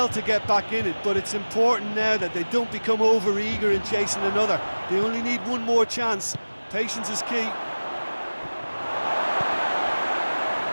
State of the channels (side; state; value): both; inverted; correlation -1.00